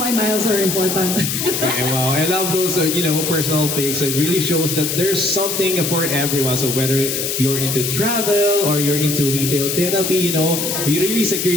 miles are important. Okay, wow, I love those, personal pics. It really shows that there's something for everyone. So whether you're into travel or you're into retail therapy, really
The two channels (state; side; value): noise; left; hiss, 2 dB below the sound